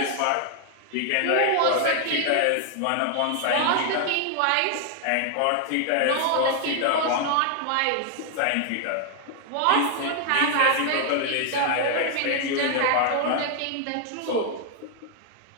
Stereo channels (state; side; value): different; both; correlation 0.00